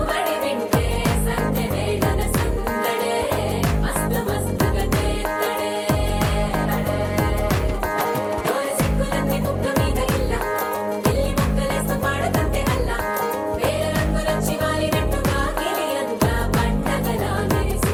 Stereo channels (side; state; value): both; identical; correlation 1.00